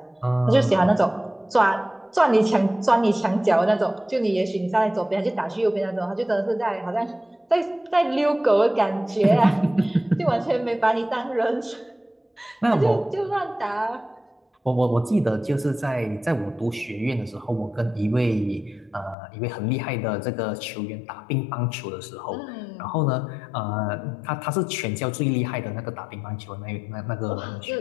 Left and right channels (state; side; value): drops out; right; at 19.2 s